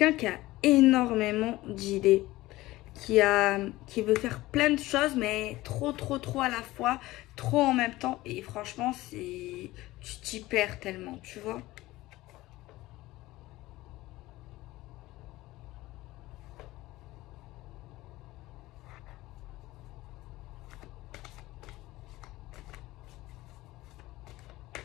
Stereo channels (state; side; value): quieter; right; 18.0 dB